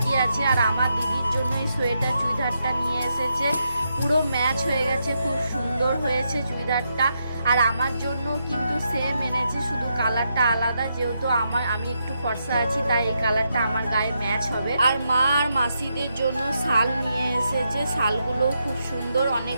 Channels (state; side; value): inverted; both; correlation -0.82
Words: আছে। আর আমার দিদির জন্য এই সোয়েটার চুড়িদারটা নিয়ে এসেছে, পুরো ম্যাচ হয়ে গেছে, খুব সুন্দর হয়েছে চুড়িদারটা। আর আমার জন্য কিন্তু সেম এনেছে, শুধু কালারটা আলাদা। যেহেতু আমি একটু ফর্সা আছি, তাই এই কালারটা আমার গায়ে ম্যাচ হবে। আর মা আর মাসিদের জন্য শাল নিয়ে এসেছে, শালগুলোও খুব সুন্দর,